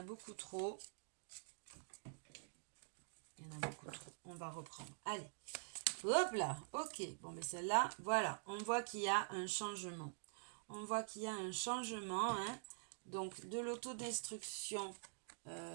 beaucoup trop. Il y en a beaucoup trop. On va reprendre. Allez. Hop là. Ok. Bon, mais celle-là, voilà. On voit qu'il y a un changement. On voit qu'il y a un changement. Hein. Donc, de l'autodestruction,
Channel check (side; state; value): left; silent; digital silence